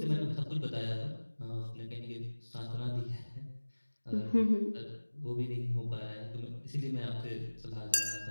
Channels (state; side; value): inverted; both; correlation -1.00